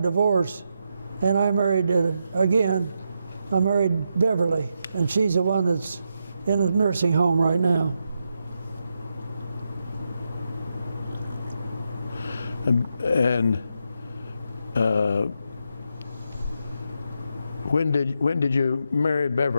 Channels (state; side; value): inverted; both; correlation -0.83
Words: divorced, and I married again. I married Beverly, and she's the one that's in a nursing home right now. And when did you marry